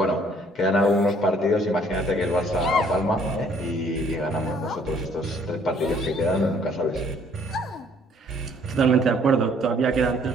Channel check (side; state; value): both; normal; correlation 0.61